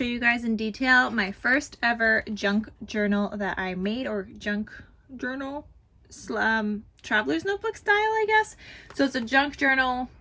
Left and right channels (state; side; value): identical; both; correlation 1.00